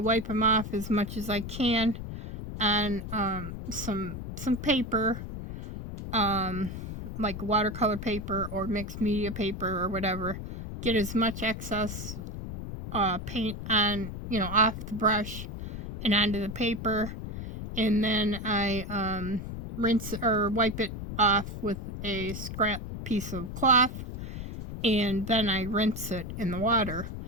them off as much as I can on some paper, like watercolor paper or mixed media paper or whatever. Get as much excess paint on, you know, off the brush and onto the paper, and then I rinse or wipe it off with a scrap piece of cloth, and then I rinse it in the water.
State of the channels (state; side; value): noise; left; rumble, 8 dB below the sound